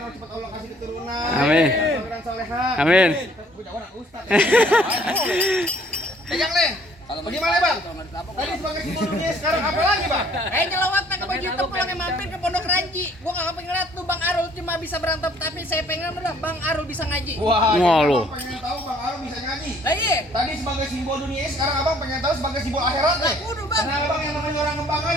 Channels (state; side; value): normal; both; correlation 0.60